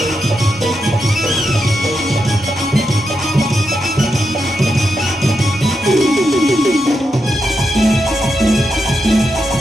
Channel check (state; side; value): normal; both; correlation 0.85